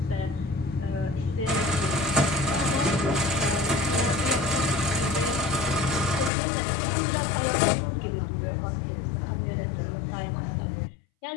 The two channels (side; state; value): right; drops out; at 6.3 s